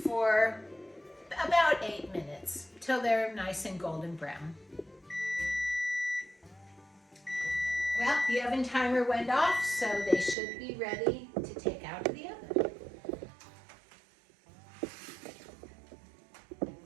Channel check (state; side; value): drops out; left; at 10.4 s